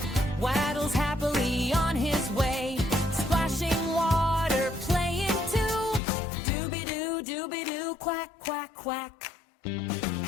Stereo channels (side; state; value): right; drops out; at 6.0 s